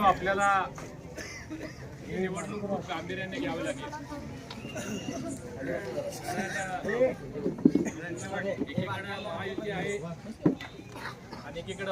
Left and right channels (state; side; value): identical; both; correlation 1.00